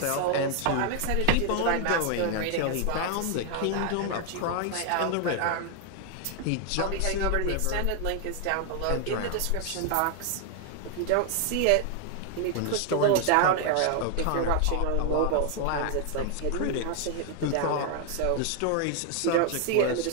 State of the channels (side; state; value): both; different; correlation 0.00